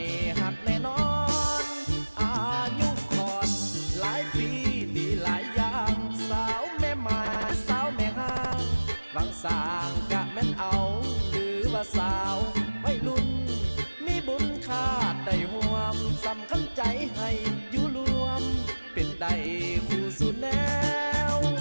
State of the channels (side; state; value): both; inverted; correlation -1.00